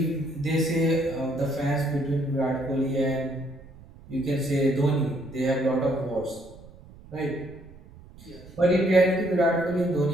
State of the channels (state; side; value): noise; right; rumble, 21 dB below the sound